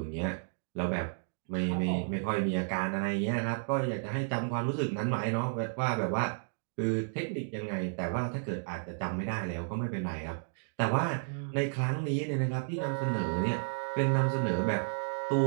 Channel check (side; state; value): left; silent; digital silence